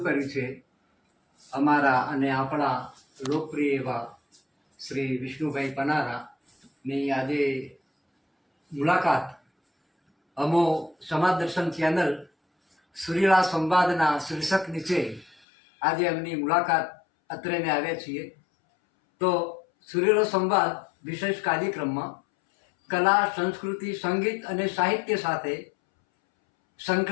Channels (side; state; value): right; drops out; at 15.4 s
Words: કર્યું છે. અમારા અને આપણા લોકપ્રિય એવા શ્રી વિષ્ણુભાઈ પનારાની આજે મુલાકાત અમો સમાજ દર્શન ચેનલ સુરીલા સંવાદના શીર્ષક નીચે આજે એમની મુલાકાત અત્રેને આવ્યા છીએ. તો સુરીલો સંવાદ વિશેષ કાર્યક્રમમાં કલા, સંસ્કૃતિ, સંગીત અને સાહિત્ય સાથે